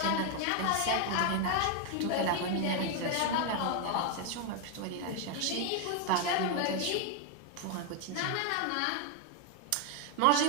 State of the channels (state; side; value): different; both; correlation 0.01